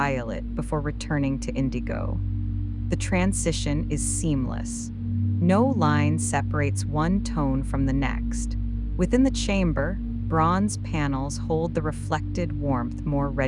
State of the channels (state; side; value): identical; both; correlation 1.00